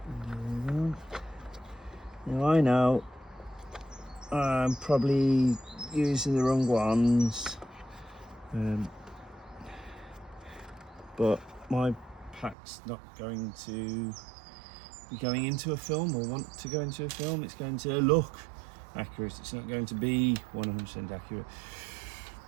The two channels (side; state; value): left; drops out; at 12.6 s